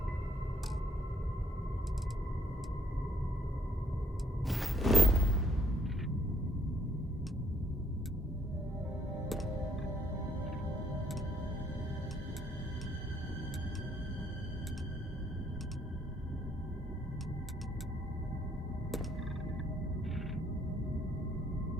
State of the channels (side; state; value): both; normal; correlation 0.65